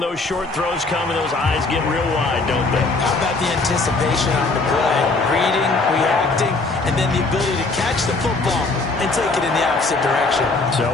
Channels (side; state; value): right; quieter; 3.5 dB